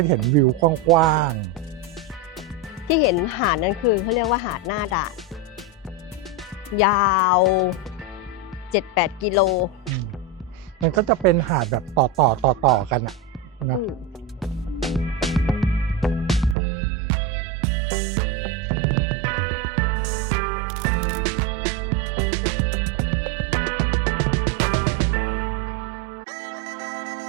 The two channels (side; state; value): left; drops out; at 16.6 s